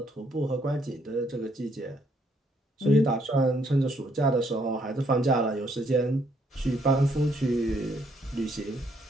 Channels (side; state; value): both; normal; correlation 0.70